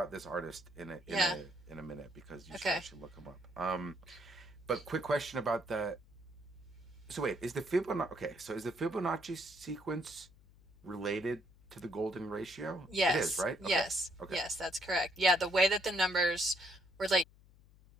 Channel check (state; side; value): noise; left; hum, 25 dB below the sound